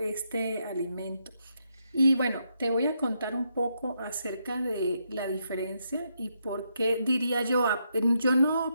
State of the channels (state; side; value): inverted; both; correlation -0.79